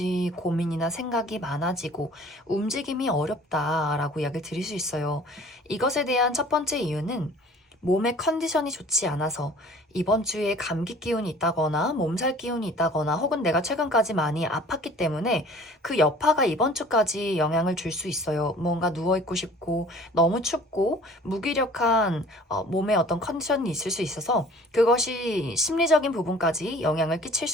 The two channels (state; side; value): normal; both; correlation 0.49